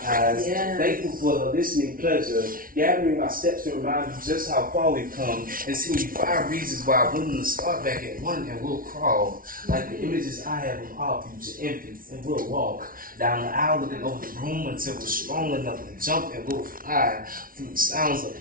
eyes. Yeah. Thankful for the listening pleasure, gathering my steps to remind you just how far we've come, and sending you 5 reasons why I'm willing to start back at 1 and we'll crawl. Like the images I have of our future infants, and we'll walk down the aisle looking over the room until we're strong enough to jump and we'll fly through the sounds of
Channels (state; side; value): late; left; 0.42 ms